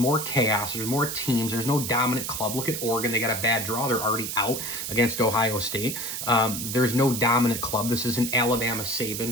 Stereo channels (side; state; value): right; noise; hiss, 5 dB below the sound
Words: chaos. There's more teams. There's no dominant club. Look at Oregon. They got a bad draw. They're already out against Ohio State. There's no dominant club. This is an Alabama